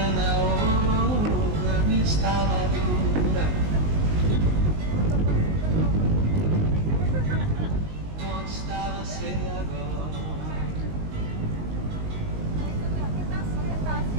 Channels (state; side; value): late; left; 19 ms